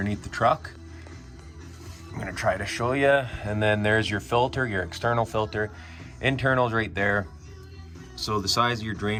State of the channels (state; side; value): identical; both; correlation 1.00